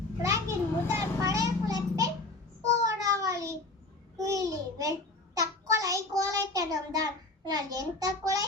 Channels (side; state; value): right; quieter; 3.1 dB